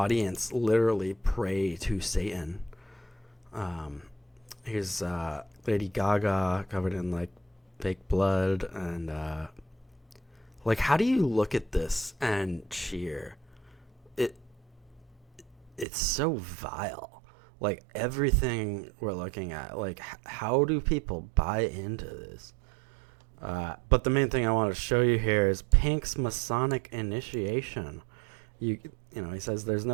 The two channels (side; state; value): left; drops out; at 15.9 s